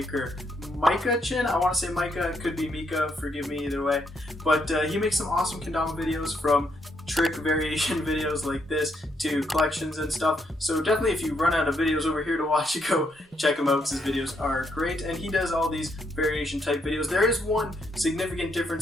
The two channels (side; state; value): both; normal; correlation 0.76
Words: Micah Chin. I want to say Micah, it could be Mika, forgive me either way. But he makes some awesome kendama videos, from trick variation videos like this to collections and stuff. So definitely if you run out of videos over here to watch, you go check him out because his videos are great. And he does all these variation type videos. There is one significant